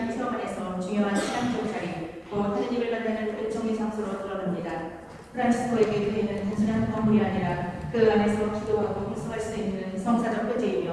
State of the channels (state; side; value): identical; both; correlation 1.00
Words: 체험 안에서 중요한 신앙적 자리, 곧 하느님을 만나는 은총의 장소로 드러납니다. 프란치스코에게 교회는 단순한 건물이 아니라 그 안에서 기도하고 활성할 수 있는 성사적